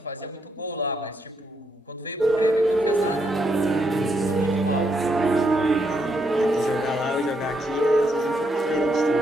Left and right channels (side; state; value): both; normal; correlation 0.77